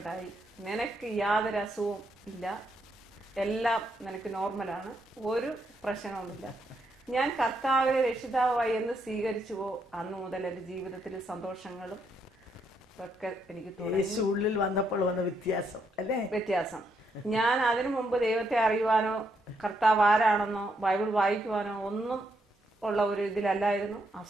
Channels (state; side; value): normal; both; correlation 0.77